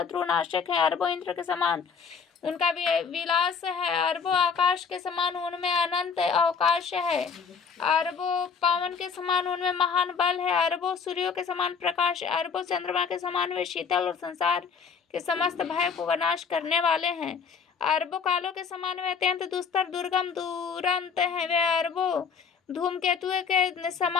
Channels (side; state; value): right; quieter; 6.1 dB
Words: है। अरबों इंद्र के समान उनका विलास है। अरबों आकाश के समान उनमें अनंत अवकाश है। अरबों पवन के समान उनमें महान बल है। अरबों सूर्यों के समान प्रकाश। अरबों चंद्रमा के समान वे शीतल और संसार के समस्त भय को विनाश करने वाले हैं। अरबों कालों के समान वे अत्यंत दुस्तर दुर्गम दुरंत हैं। वे अरबों धूमकेतु के